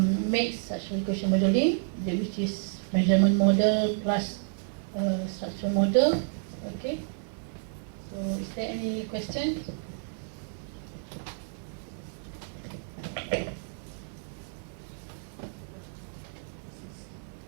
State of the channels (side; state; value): left; silent; 58 dB below the other